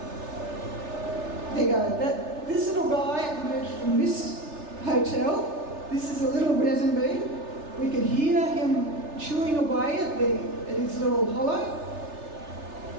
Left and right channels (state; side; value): late; left; 3.3 ms